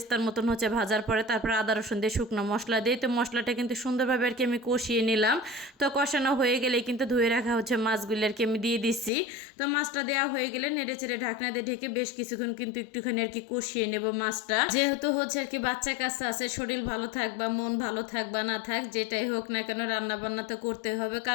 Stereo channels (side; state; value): right; drops out; at 9.1 s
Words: মতন হচ্ছে ভাজার পরে, তারপর আদা রসুন দিয়ে শুকনো মশলা দিয়ে তো মশলাটা কিন্তু সুন্দরভাবে আর কি আমি কষিয়ে নিলাম। তো কষানো হয়ে গেলে কিন্তু ধুয়ে রাখা হচ্ছে মাছগুলি আর কি আমি দিয়ে দিচ্ছি। তো মাছটা দেওয়া হয়ে গেলে নেড়ে চেড়ে ঢাকনা দিয়ে ঢেকে বেশ কিছুক্ষণ কিন্তু একটুখানি আর কি কষিয়ে নেব মাছটা। যেহেতু হচ্ছে আর কি বাচ্চা কাচ্চা আছে, শরীর ভালো থাক বা মন ভালো থাক বা না থাক যেটাই হোক না কেন রান্না বান্না তো করতে হবে,